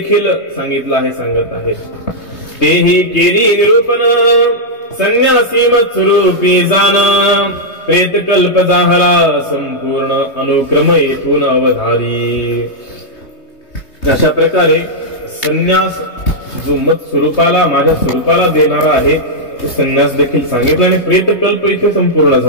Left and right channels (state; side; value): late; right; 3.2 ms